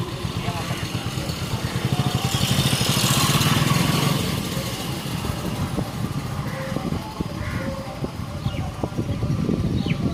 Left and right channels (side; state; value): both; identical; correlation 1.00